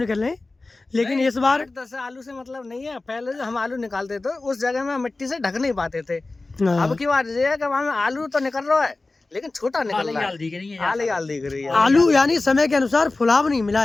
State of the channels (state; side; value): quieter; right; 3.3 dB